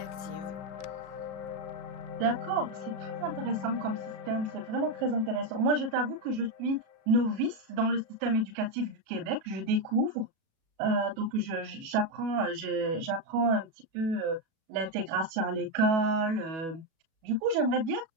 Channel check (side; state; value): left; late; 36 ms